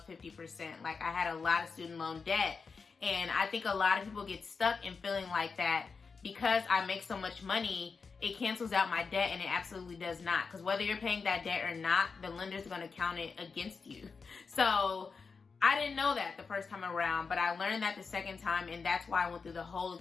50%. Like, I had a lot of student loan debt. And I think a lot of people get stuck in feeling like that because I make so much money, it cancels out my debt, and it absolutely does not. Because whether you're paying that debt or not, the lender's going to count it against you. So I didn't know that the first time around, but I learned that the second time, and that's why I went through the whole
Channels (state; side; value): quieter; right; 5.0 dB